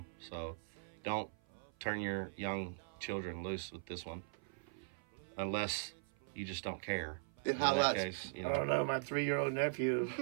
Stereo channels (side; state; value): left; silent; 51 dB below the other